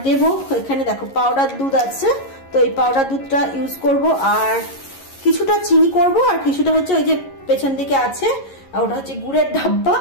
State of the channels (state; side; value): late; right; 11 ms